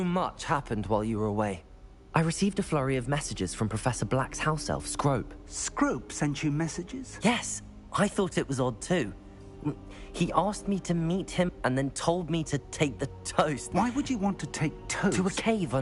much happened while you were away. I received a flurry of messages from Professor Black's house elf, Scrope. Scrope sent you messages? Yes. I thought it was odd too. He asked me to meet him and then told me to take the toast. Why would you want to take toast? To a cave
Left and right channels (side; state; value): both; identical; correlation 1.00